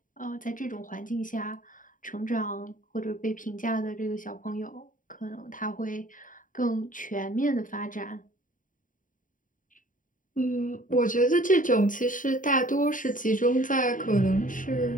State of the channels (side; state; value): right; late; 0.38 ms